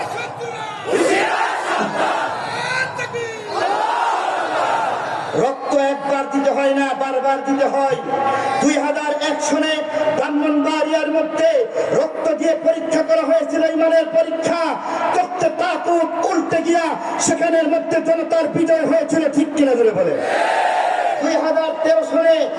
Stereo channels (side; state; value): both; identical; correlation 1.00